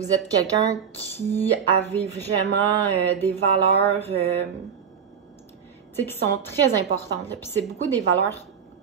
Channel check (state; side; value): quieter; left; 7.2 dB